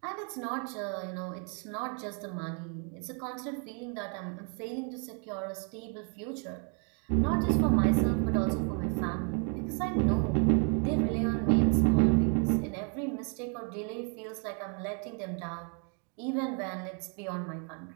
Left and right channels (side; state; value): left; quieter; 39.8 dB